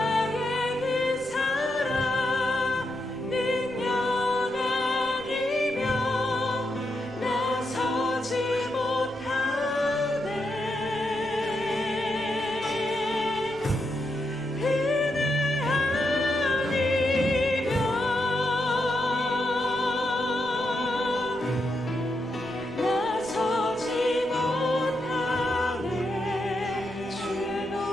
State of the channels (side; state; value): left; noise; rumble, 24 dB below the sound